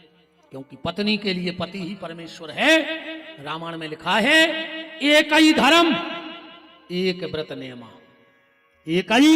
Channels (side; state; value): both; identical; correlation 1.00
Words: क्योंकि पत्नी के लिए पति ही परमेश्वर है। रामायण में लिखा है एक ही धर्म एक व्रत नेमा, एक